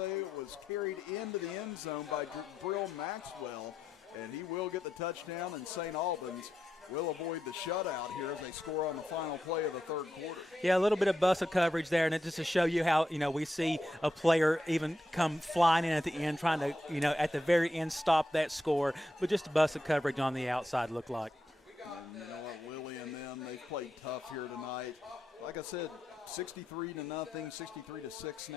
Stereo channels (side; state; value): both; normal; correlation 0.85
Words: it was carried into the end zone by Brill Maxwell, and he will get the touchdown, and St. Albans will avoid the shutout here as they score on the final play of the third quarter. Yeah, a little bit of busted coverage there, and it just to show you how, you know, we see a player even come flying in at the end, trying to, you know, at the very end stop that score, but just a busted coverage on the outside looked like. And you know what, Lily and them, they've played tough here tonight. Like I said, 63-0, 63-6